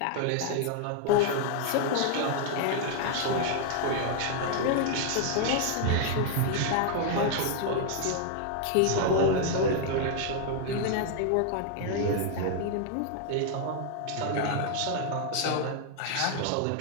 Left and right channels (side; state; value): both; different; correlation 0.00